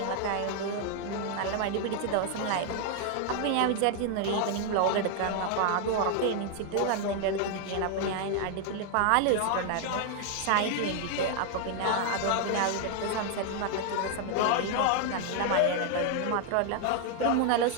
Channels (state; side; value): different; both; correlation 0.00